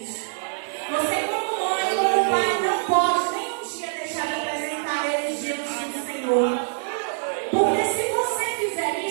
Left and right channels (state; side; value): silent; left; digital silence